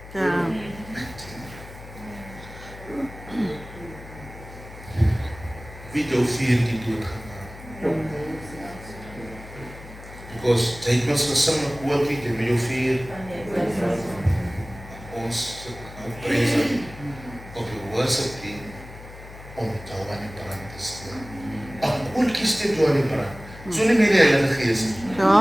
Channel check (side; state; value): left; noise; hum, 16 dB below the sound